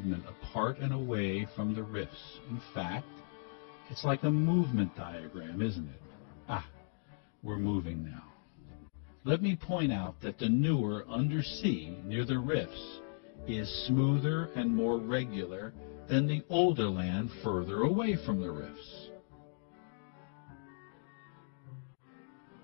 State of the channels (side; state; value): right; silent; digital silence